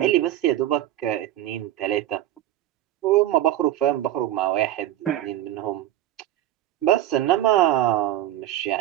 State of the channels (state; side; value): quieter; left; 13.3 dB